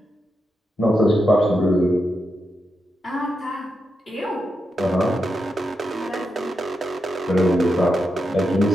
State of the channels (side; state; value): both; normal; correlation 0.86